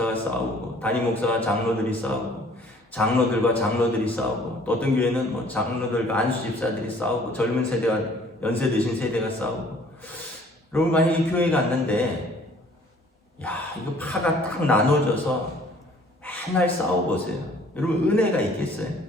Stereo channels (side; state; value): both; normal; correlation 0.55